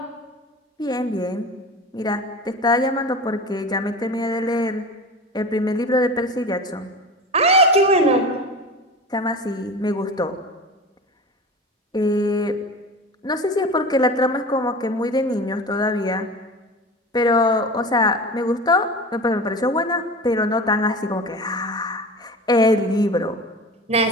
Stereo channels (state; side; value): normal; both; correlation 0.33